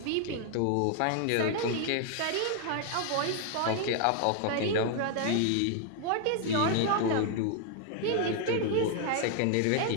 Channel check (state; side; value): different; both; correlation 0.01